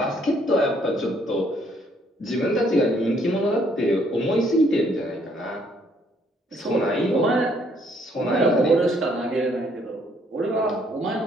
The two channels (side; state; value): both; normal; correlation 0.67